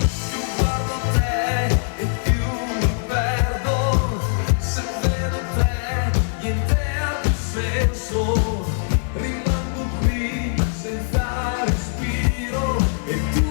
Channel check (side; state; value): right; silent; 64 dB below the other